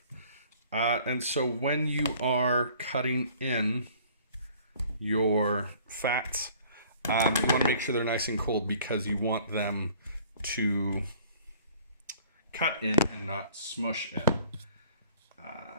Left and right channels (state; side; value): inverted; both; correlation -0.53